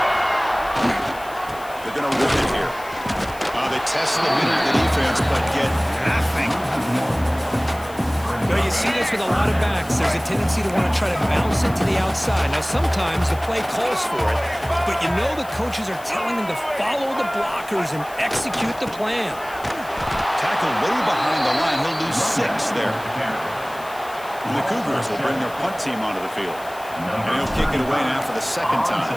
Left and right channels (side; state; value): left; noise; hiss, 20 dB below the sound